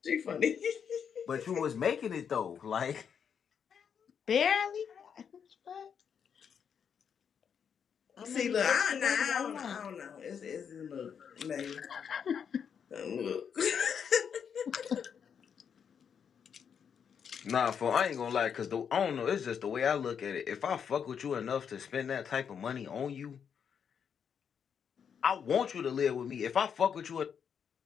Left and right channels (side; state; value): right; quieter; 7.4 dB